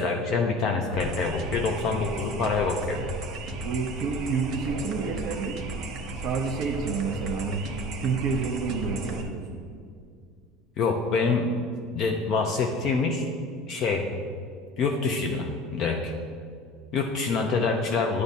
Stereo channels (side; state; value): both; normal; correlation 0.40